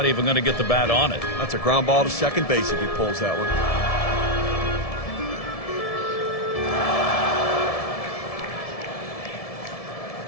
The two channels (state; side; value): late; right; 1.7 ms